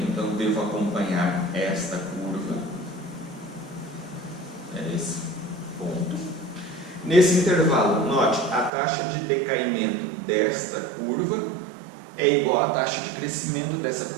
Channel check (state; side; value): drops out; left; at 8.7 s